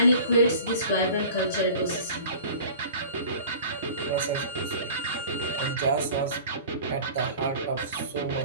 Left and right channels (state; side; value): inverted; both; correlation -0.42